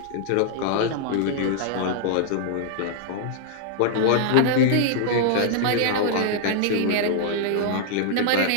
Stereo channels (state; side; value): different; both; correlation -0.01